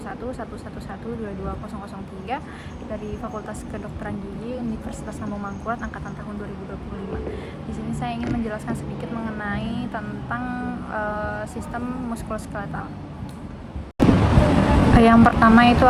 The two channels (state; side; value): identical; both; correlation 1.00